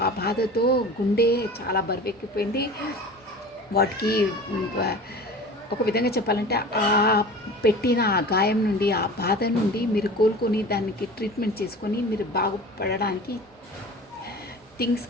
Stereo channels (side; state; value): both; normal; correlation 0.38